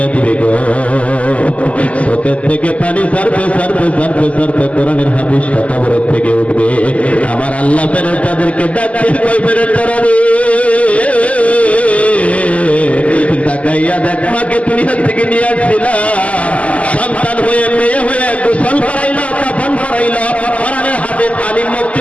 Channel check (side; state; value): right; late; 0.067 ms